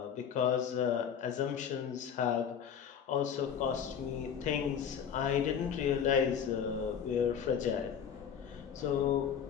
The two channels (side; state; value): right; quieter; 7.9 dB